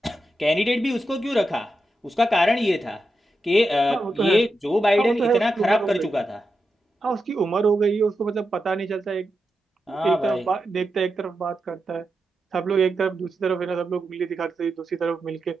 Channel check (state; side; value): normal; both; correlation 0.88